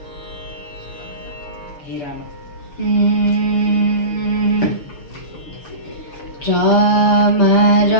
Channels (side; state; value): right; late; 6.9 ms